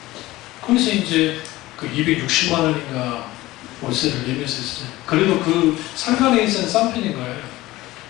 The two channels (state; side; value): quieter; right; 18.0 dB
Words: 그래서 이제 그 260만 원인가 월세를 내면서 했어요. 그래도 그 상가 내에서는 싼 편인 거예요.